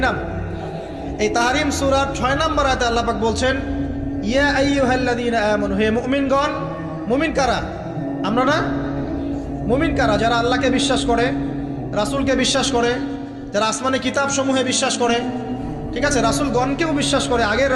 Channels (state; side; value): identical; both; correlation 1.00